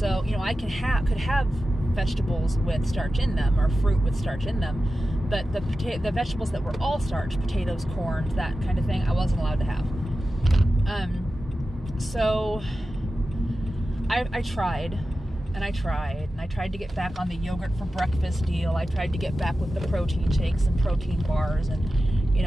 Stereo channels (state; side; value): normal; both; correlation 0.93